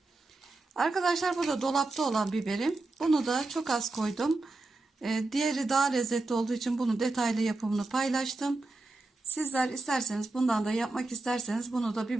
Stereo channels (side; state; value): left; quieter; 3.2 dB